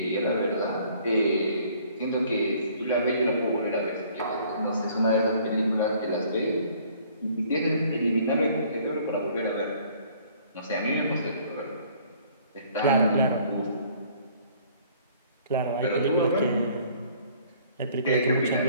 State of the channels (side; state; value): both; inverted; correlation -0.57